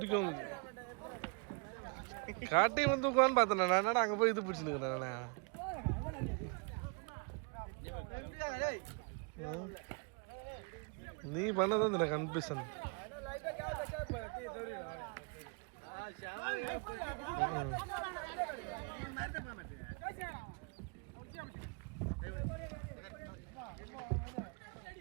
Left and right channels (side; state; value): left; quieter; 34.8 dB